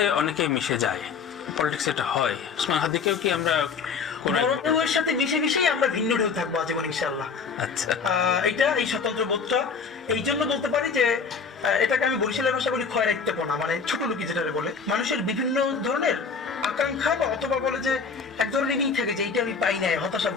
অনেকে মিশে যায়, পলিটিক্স এটা হয়। ওসমান হাদিকেও কি আমরা বড় ঢেউয়ের সাথে মিশে মিশেই আমরা ভিন্ন ঢেউ থাকবো আজীবন ইনশাআল্লাহ। আচ্ছা, এটা এই স্বতন্ত্র বোধটা এই জন্য বলতে পারি যে এটাকে আমি বরিশালের ভাষা বলি খয়রাইত্যপনা, মানে ছোট লোকি যেটা বলে। মানুষের বিভিন্ন ধরনের আকাঙ্ক্ষা বা অথবা বলে যে এক ধরনের ই থাকে যে এইটা আমি পাই নাই, হতাশা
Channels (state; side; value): quieter; right; 5.5 dB